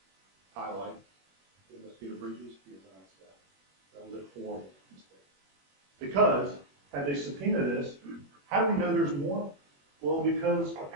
investigation. Highlight investigator Bridges, he is an staff. That was a horrible mistake. Because had they subpoenaed this, how do we know there's more? Well, because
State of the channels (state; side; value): late; left; 21 ms